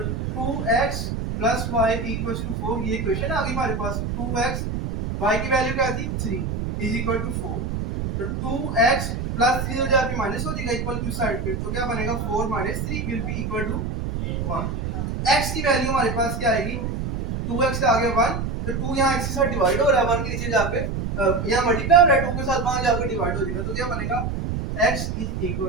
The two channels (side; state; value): right; noise; rumble, 3 dB below the sound